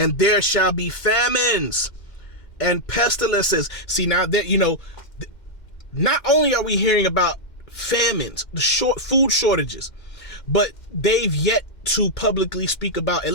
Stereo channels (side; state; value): right; late; 2.1 ms